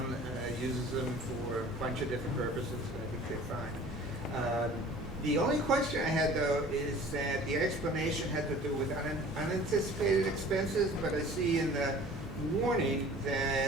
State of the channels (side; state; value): both; normal; correlation 0.46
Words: uses them for a bunch of different purposes, and I think they're fine. The only question I had, though, is that the explanation had to do with unanticipated expenses, but I see in the warning